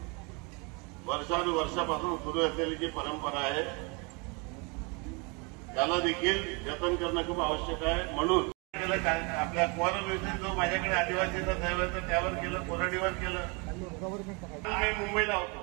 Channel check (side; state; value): left; quieter; 30.9 dB